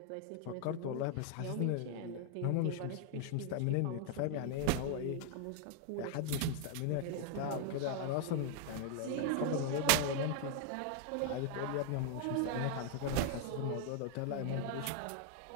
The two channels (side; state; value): both; different; correlation 0.00